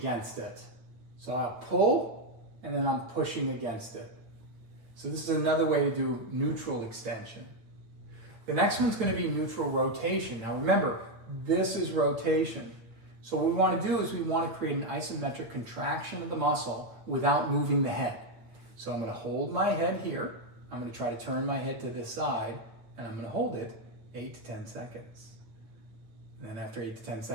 it. So I'll pull and then I'm pushing against it. So this is another way to do neutral extension. The next one's going to be neutral rotation. Now remember, this is rotation. So what we want to do is we want to create an isometric contraction of the muscle without moving the head. So I'm going to hold my head here. I'm going to try to turn my head to this side, and I'm going to hold it 8 to 10 seconds. And then after 8 to 10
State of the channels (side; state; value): left; late; 8.8 ms